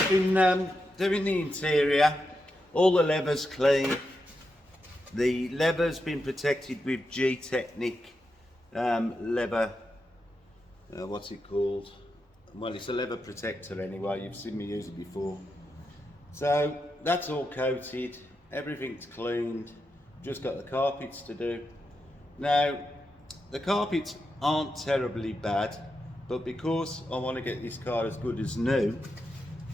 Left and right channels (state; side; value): normal; both; correlation 0.87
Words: been doing the interior, all the leather's clean. The leather's been protected with G-Technic leather, what's it called? Well, it's a leather protector anyway, you've seen me use it before. So that's all coated, everything's cleaned, just got the carpets to do. Now, the carpets aren't terribly bad, but because I want to get this car as good as new,